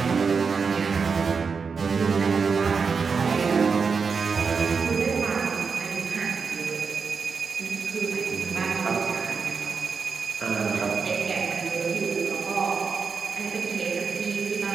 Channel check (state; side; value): quieter; left; 5.4 dB